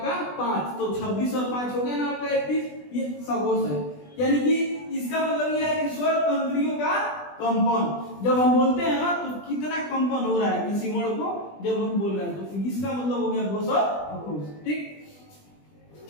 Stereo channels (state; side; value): late; right; 20 ms